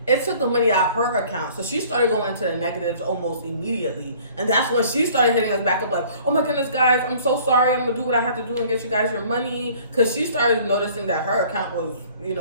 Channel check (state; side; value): inverted; both; correlation -0.52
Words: it took the money out of her account. So she started going into the negatives almost immediately. And that's when she started hitting us back up like, oh my goodness, guys, I'm so sorry. I'm going to do what I have to do and get you guys your money. Because she started noticing that her account was,